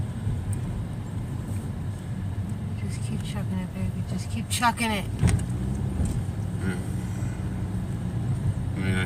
Just keep chucking it, baby. Just keep chucking it. I mean,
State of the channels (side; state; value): both; identical; correlation 1.00